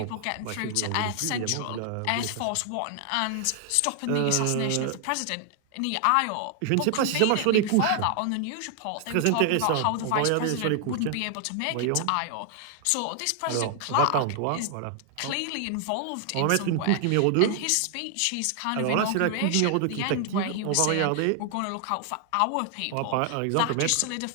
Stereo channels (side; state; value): both; different; correlation 0.00